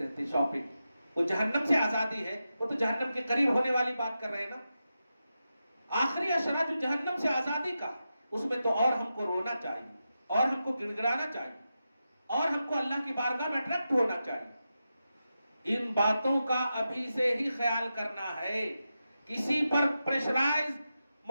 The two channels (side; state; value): both; inverted; correlation -0.90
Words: شاپنگ۔ وہ جہنم سے آزادی ہے، وہ تو جہنم کے قریب ہونے والی بات کر رہے ہیں نا۔ آخری اشرا جو جہنم سے آزادی کا، اس میں تو اور ہم کو رونا چاہیے، اور ہم کو گڑگڑانا چاہیے، اور ہم کو اللہ کی بارگاہ میں اٹریکٹ ہونا چاہیے۔ ان باتوں کا ابھی سے ہی خیال کرنا ہے، کسی پر پریشرائز